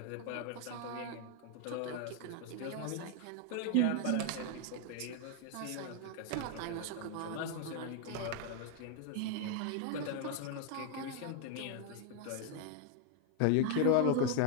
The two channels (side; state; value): both; different; correlation 0.00